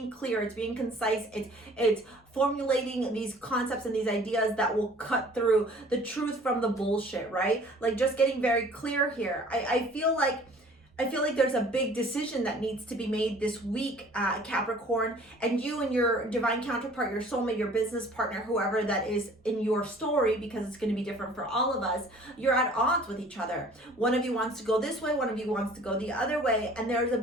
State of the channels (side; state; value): both; normal; correlation 0.51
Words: clear, it's being concise, it's formulating these concepts and these ideas that will cut through the truth from the bullshit, right? Like just getting very clear here. I feel like there's a big decision that needs to be made this week, Capricorn, and you and your divine counterpart, your soulmate, your business partner, whoever that is in your story, because it's going to be different for all of us, you're at odds with each other. One of you wants to go this way, one of you wants to go the other way, and there's a